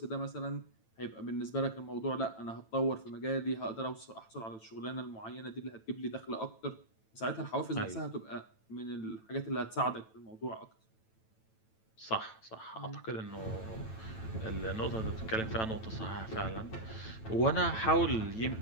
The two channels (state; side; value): late; right; 9.0 ms